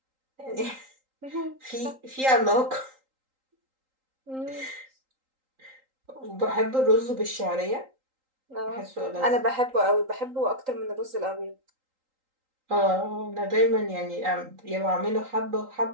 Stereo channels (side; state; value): left; late; 3.8 ms